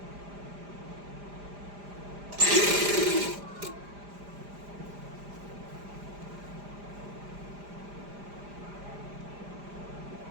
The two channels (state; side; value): late; left; 5.0 ms